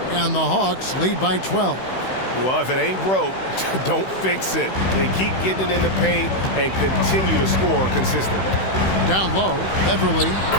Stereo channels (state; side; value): late; right; 16 ms